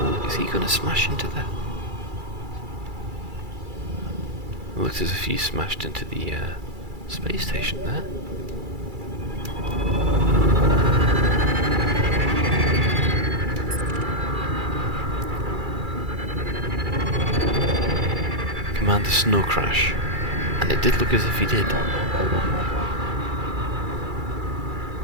Is he going to smash into that? It looks as if he smashed into the space station there. Command a snow crash, and it did look as if he did.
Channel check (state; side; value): late; left; 2.3 ms